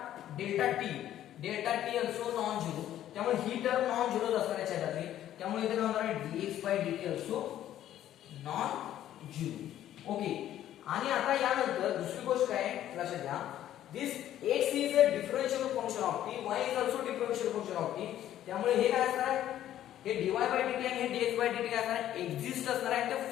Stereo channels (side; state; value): right; quieter; 12.0 dB